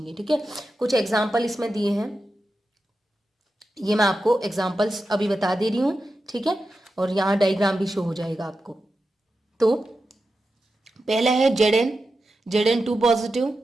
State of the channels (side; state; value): both; normal; correlation 0.90